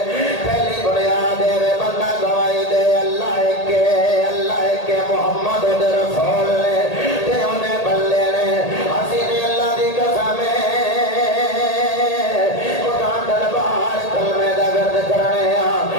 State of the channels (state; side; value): late; right; 1.8 ms